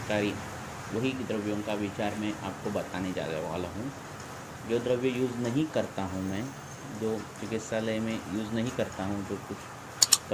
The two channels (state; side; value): identical; both; correlation 1.00